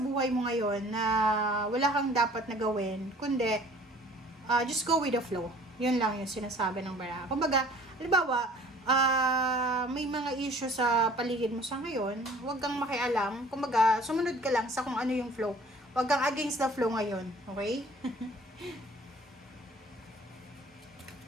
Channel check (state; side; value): normal; both; correlation 0.51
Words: buhay mo ngayon na wala kang dapat na gawin, kundi just go with the flow. Yun lang yung sinasabi ng bara. Kumbaga, halimbawa, may mga issue sa paligid mo sa ngayon, huwag kang makialam. Kumbaga, sumunod ka lang sa kung ano yung flow. Huwag kang against the flow ngayon. Okay?